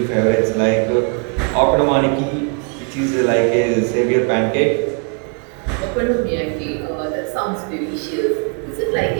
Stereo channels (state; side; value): quieter; left; 38.6 dB